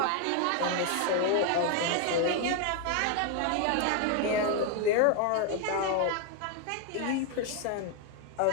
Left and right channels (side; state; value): both; different; correlation 0.01